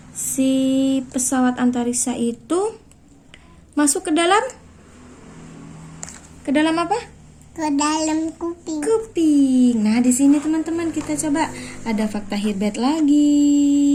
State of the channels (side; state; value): both; identical; correlation 1.00